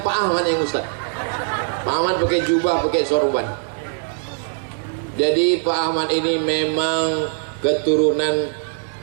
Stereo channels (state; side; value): silent; left; digital silence